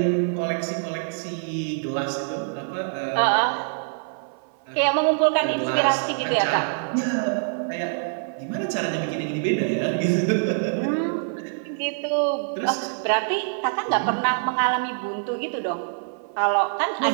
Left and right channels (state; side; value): silent; left; 55 dB below the other